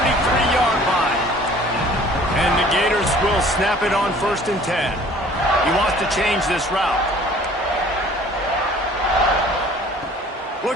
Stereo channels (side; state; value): both; normal; correlation 0.51